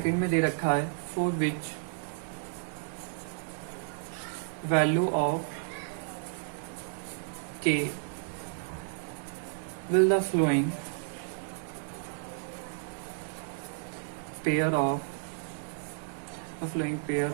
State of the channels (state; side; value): silent; left; digital silence